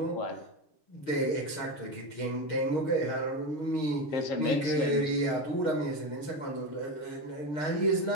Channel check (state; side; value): late; right; 6.5 ms